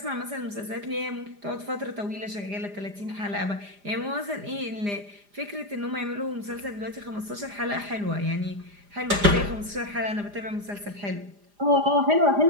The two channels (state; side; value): late; left; 4.9 ms